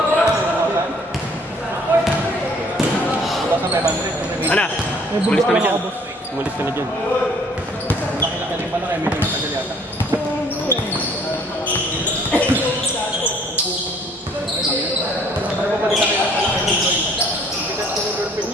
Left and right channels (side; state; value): both; normal; correlation 0.58